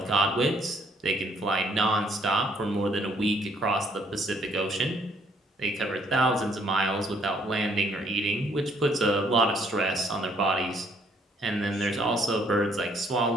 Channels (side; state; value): both; normal; correlation 0.65